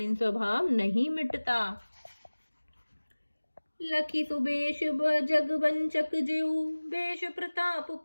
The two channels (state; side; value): inverted; both; correlation -1.00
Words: स्वभाव नहीं मिटता। लखी सुबेश जग वंचक जेऊ, बेश प्रताप